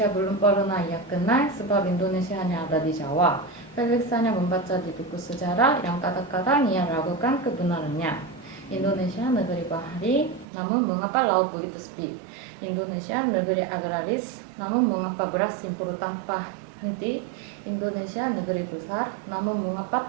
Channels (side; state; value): left; drops out; at 10.5 s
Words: belum pernah ia kenal sebab Indonesia hanya ada di Jawa. Felix hanya membaca di buku sejarah yang kadang-kadang ia ragukan kebenarannya. Indonesia negeri bahari, namun mengapa laut begitu sepi? Indonesia negeri agraris, namun mengapa beras impor tanpa henti? Indonesia negeri besar, namun mengapa